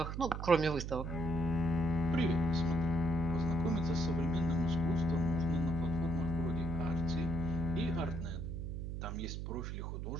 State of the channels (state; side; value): noise; right; hum, 4 dB below the sound